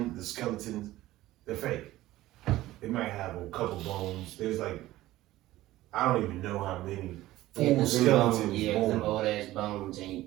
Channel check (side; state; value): left; quieter; 16.1 dB